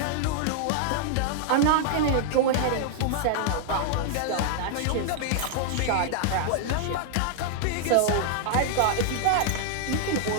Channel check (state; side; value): different; both; correlation -0.01